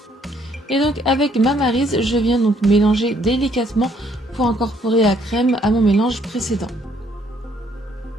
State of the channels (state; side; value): normal; both; correlation 0.67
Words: Et donc avec ma maryse, je viens donc mélanger délicatement pour incorporer la crème à mon mélange précédent.